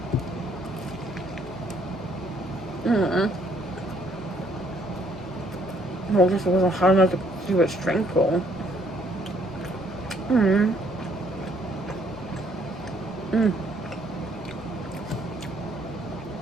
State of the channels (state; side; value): normal; both; correlation 0.66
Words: What? Well, this wasn't hard enough to keep it strengthful.